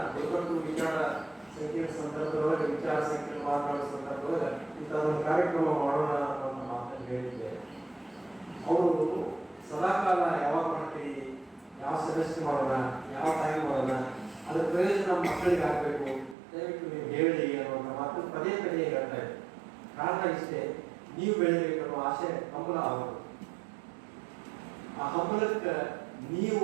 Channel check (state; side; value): drops out; left; at 16.4 s